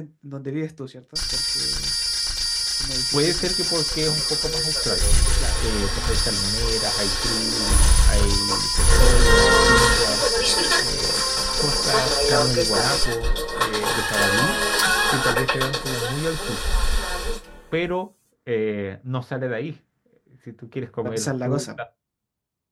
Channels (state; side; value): identical; both; correlation 1.00